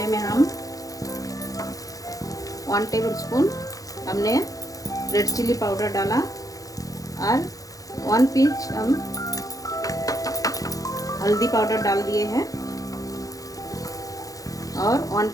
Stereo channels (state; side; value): late; right; 0.17 ms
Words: में हम 1 टेबलस्पून हमने रेड चिली पाउडर डाला और 1 पिंच हम हल्दी पाउडर डाल दिए हैं और 1